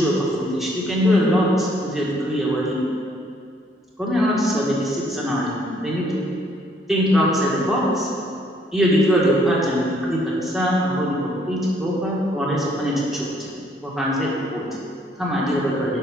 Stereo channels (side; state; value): both; normal; correlation 0.65